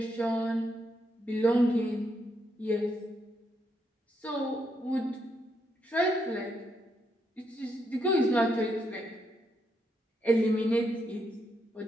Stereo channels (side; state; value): both; normal; correlation 0.79